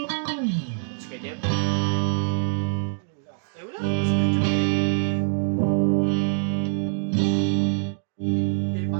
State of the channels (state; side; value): silent; left; 62 dB below the other